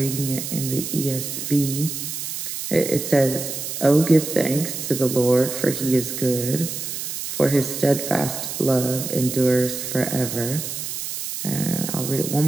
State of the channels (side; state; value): right; noise; hiss, 5 dB below the sound